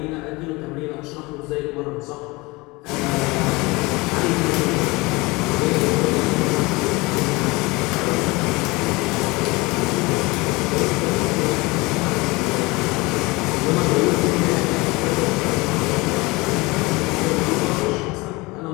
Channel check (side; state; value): right; quieter; 23.8 dB